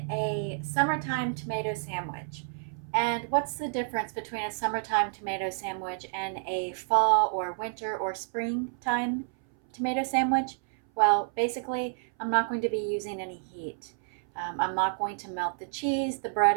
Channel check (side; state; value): left; silent; 58 dB below the other